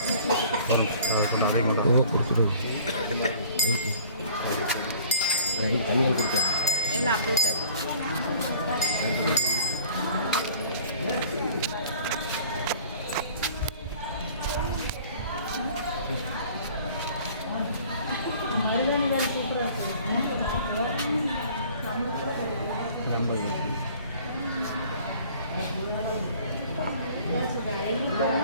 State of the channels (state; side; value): inverted; both; correlation -0.49